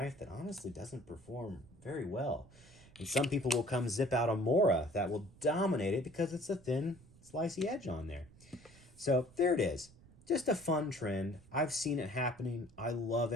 that honestly doesn't perform very well. And some people will come zip out a Mora that will dominate it because it's a thin, slicey edge on there. So there it is. Just a fun trend. I've seen it happening. I love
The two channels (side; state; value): right; noise; rumble, 24 dB below the sound